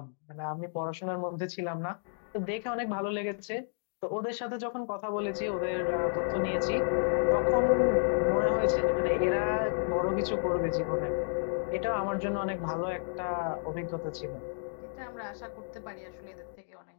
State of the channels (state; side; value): silent; right; digital silence